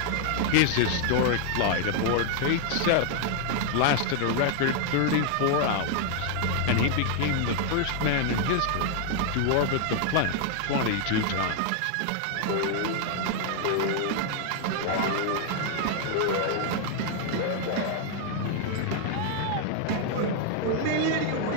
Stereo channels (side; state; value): both; different; correlation 0.00